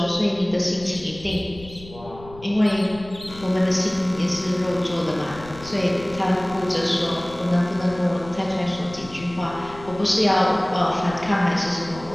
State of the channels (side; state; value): left; noise; rumble, 18 dB below the sound